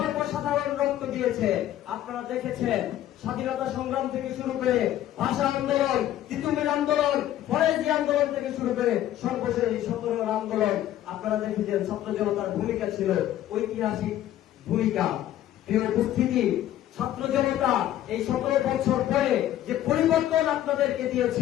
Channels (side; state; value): right; quieter; 12.6 dB